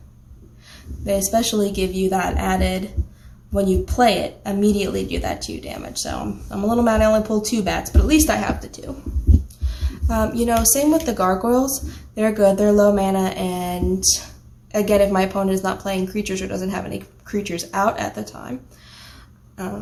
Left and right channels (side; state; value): both; identical; correlation 1.00